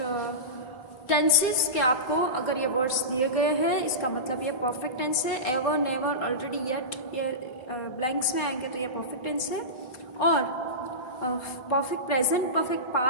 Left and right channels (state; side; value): late; right; 4.0 ms